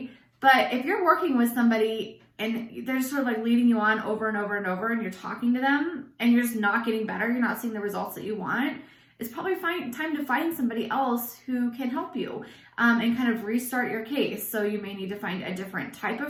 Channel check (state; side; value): identical; both; correlation 1.00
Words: But if you're working with somebody and they're just sort of like leading you on over and over and over, and you're talking to them and you're just not getting better, you're not seeing the results that you want, it's probably time to find somebody else who can help you and kind of restart your case. So you may need to find a different type